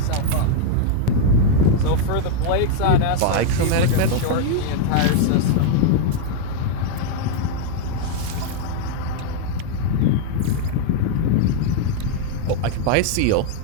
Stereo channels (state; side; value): different; both; correlation 0.00